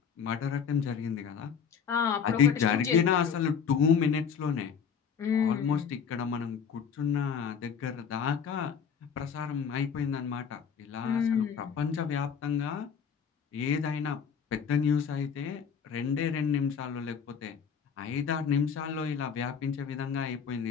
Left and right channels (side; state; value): right; quieter; 6.9 dB